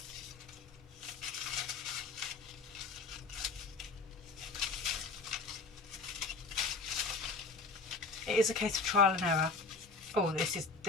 it is a case of trial and error. Oh,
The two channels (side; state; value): right; quieter; 3.8 dB